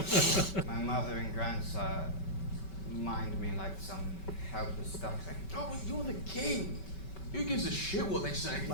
My mother and grandsire mind me like some helpless duckling. Oh, but you're the king. Who gives a shit what they say?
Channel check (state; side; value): late; right; 5.2 ms